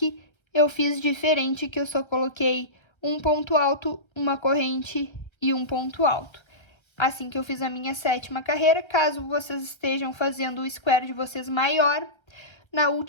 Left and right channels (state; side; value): late; right; 1.3 ms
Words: eu fiz diferente, que eu só coloquei um ponto alto, uma corrente e um ponto alto. Assim que eu fiz a minha sétima carreira, caso vocês estejam fazendo o square de vocês maior, na